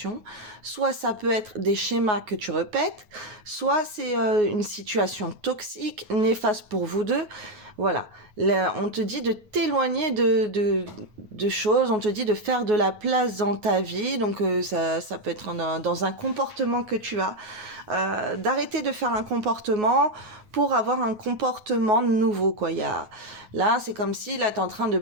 soit ça peut être des schémas que tu répètes, soit c'est une situation toxique, néfaste pour vous deux. Voilà. Là, on te dit de t'éloigner de choses, on te dit de faire de la place dans ta vie, donc ça peut être dans un comportement que tu as, d'arrêter de faire un comportement pour avoir un comportement nouveau, quoi. Là, c'est comme si, là, t'es en train de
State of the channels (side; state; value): left; late; 9.5 ms